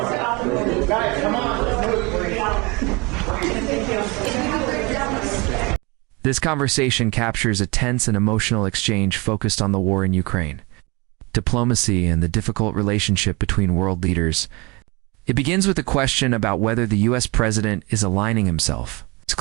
Guys, come on. This conversation captures a tense and emotional exchange focused on the war in Ukraine, diplomacy, and the difficult relationship between world leaders. It begins with a question about whether the U.S. president is aligning himself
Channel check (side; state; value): left; quieter; 26.7 dB